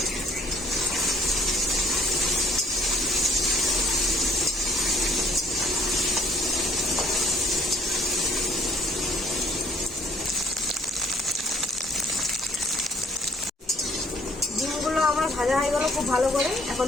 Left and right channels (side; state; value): both; normal; correlation 0.61